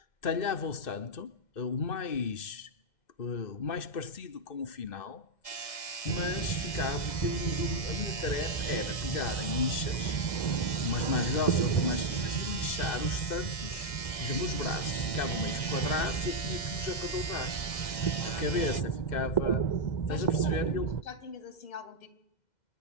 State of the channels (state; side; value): late; right; 2.1 ms